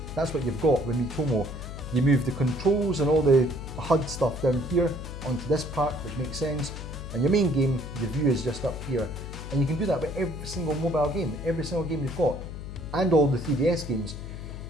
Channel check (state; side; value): noise; left; hum, 9 dB below the sound